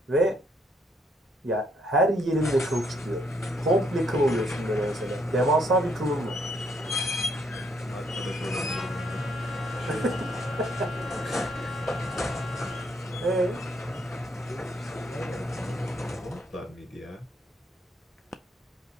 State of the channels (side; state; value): both; normal; correlation 0.71